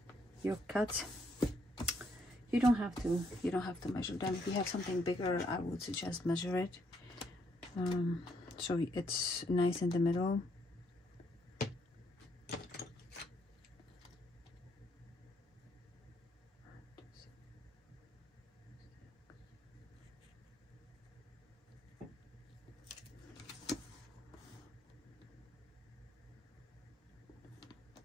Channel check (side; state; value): both; normal; correlation 0.72